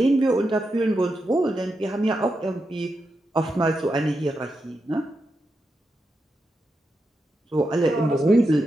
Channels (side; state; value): both; normal; correlation 0.87